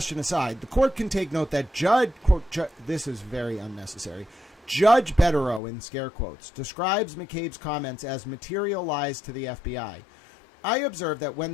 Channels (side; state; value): right; drops out; at 5.6 s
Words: aside, the court can take note that this is very unnecessary. Judge Betterow, in scare quotes, describes McCabe's comments as material lies to the FBI. I observe that when